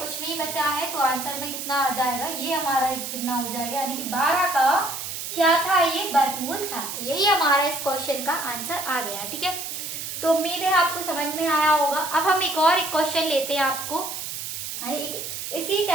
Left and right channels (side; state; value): right; noise; hiss, 6 dB below the sound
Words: नहीं बचा है, तो आंसर में कितना आ जाएगा, ये हमारा कितना हो जाएगा, यानी कि 12 का क्या था, ये वर्गमूल था। तो यही हमारा इस क्वेश्चन का आंसर आ गया। ठीक है, तो उम्मीद है आपको समझ में आया होगा। अब हम एक और क्वेश्चन लेते हैं, आपको इसी